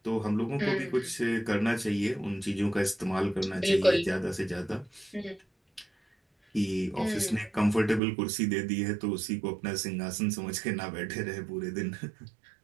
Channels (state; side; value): drops out; left; at 8.0 s